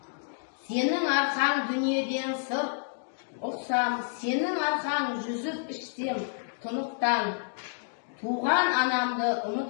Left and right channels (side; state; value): right; silent; digital silence